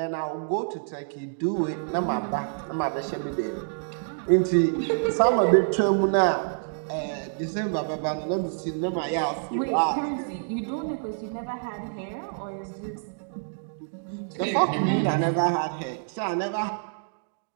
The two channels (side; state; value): left; silent; digital silence